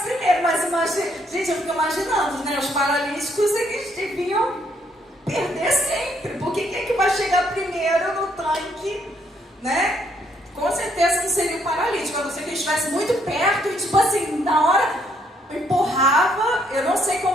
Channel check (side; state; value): both; normal; correlation 0.70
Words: primeiro. Mas imagina, gente, eu fico imaginando, né? Os paralíticos, eles deviam perder sempre. Porque quem é que vai chegar primeiro no tanque, né? Com certeza não seria o paralítico, a não ser que ele estivesse muito perto e, tipo assim, na hora empurrava. Eu não sei como